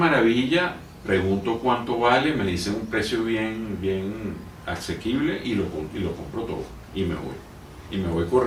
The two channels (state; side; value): identical; both; correlation 1.00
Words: pregunto cuánto vale, me dicen un precio bien asequible y lo compro todo y me voy. Y me voy